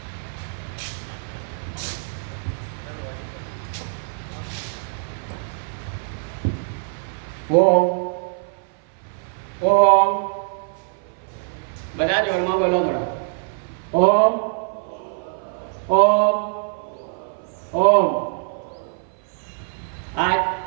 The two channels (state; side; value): silent; left; 57 dB below the other